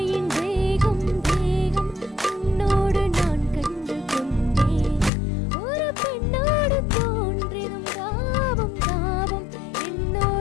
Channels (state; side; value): drops out; right; at 5.1 s